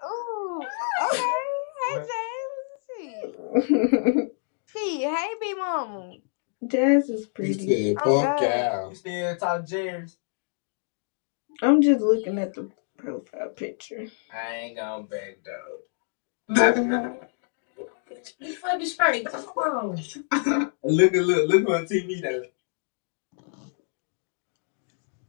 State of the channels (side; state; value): right; silent; digital silence